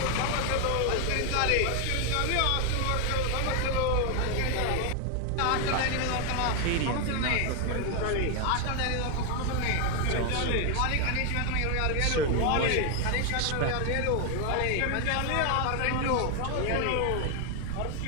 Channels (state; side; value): different; both; correlation 0.01